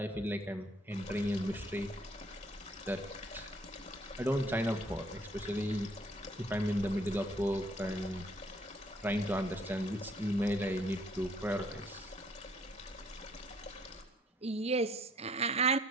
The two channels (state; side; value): normal; both; correlation 0.63